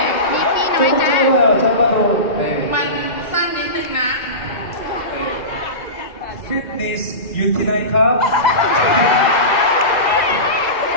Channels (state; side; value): late; right; 2.0 ms